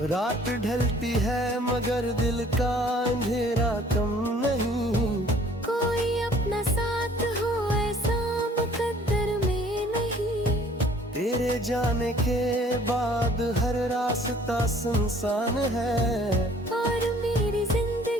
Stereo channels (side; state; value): both; normal; correlation 0.55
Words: रात ढलती है मगर दिल का अंधेरा कम नहीं। कोई अपना साथ हो ऐसा मुकद्दर में नहीं। तेरे जाने के बाद हर रास्ता सुनसान है। और मेरी